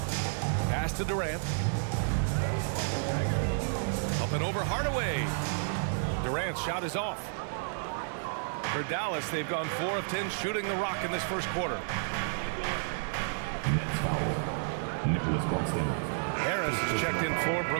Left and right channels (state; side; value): silent; left; digital silence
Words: Pass to Durant. Up and over Hardaway. Durant's shot is off. For Dallas, they've gone 4 of 10 shooting the rock in this first quarter. Harris is checked in for